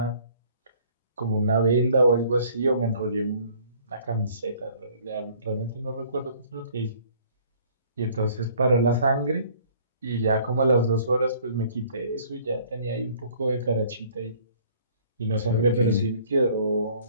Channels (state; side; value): inverted; both; correlation -0.56